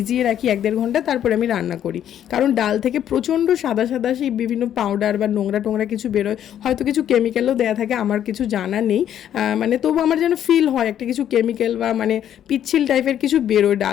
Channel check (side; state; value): right; quieter; 10.3 dB